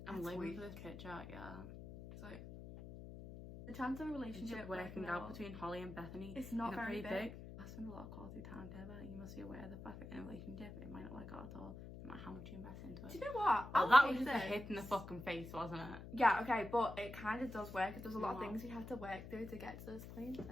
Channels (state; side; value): noise; left; hum, 11 dB below the sound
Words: I'm That's living weak. for this picture, yeah. So the chance of a relationship Working out between Holly and Bethany. it's not Isn't it very pretty big. I spend a lot of quality time together. You must be aware of the fact that in a relationship it might not work out at all. No matter how much you invest into Do it. you know what? Well, I'll that was take just a this. hit in the fucking face, wasn't it? Yeah, okay, but it kind of does work. There's a lot of What? things we had to work through to get to this point.